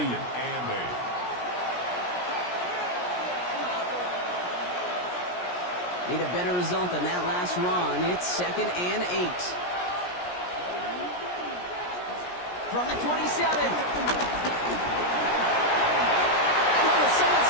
Need a better result than that last run. It's 2nd and 8. From the 27. Someone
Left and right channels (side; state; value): right; late; 17 ms